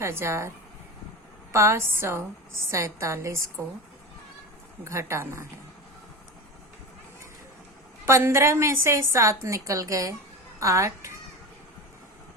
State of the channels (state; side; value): normal; both; correlation 0.25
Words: को घटाना है। 15 में से 7 निकल गए 8।